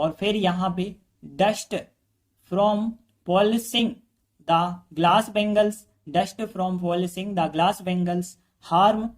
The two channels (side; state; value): both; identical; correlation 1.00